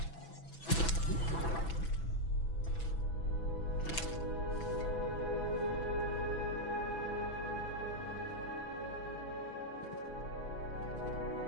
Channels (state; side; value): late; right; 6.0 ms